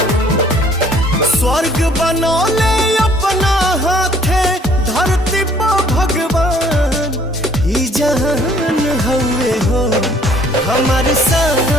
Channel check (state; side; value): normal; both; correlation 0.59